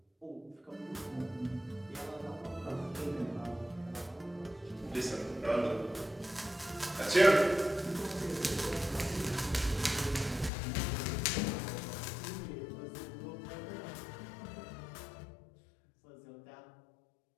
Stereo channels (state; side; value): drops out; right; at 10.5 s